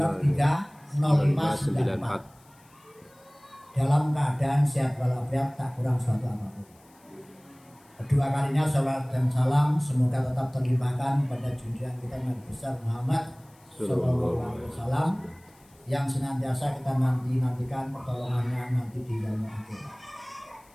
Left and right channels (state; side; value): noise; left; hiss, 30 dB below the sound